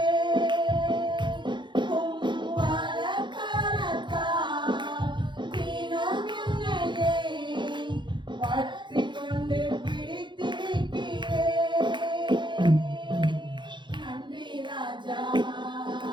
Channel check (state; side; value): late; left; 0.23 ms